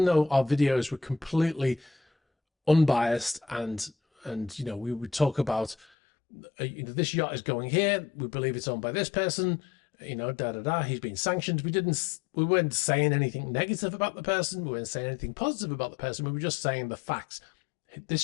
though our videos were completely unbiased, and we would talk about this yacht is going here, we believe it's owned by this person, he's been sanctioned. We weren't saying anything negative about the person. We weren't saying anything positive about the person. We were just saying the facts.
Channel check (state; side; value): drops out; right; at 5.9 s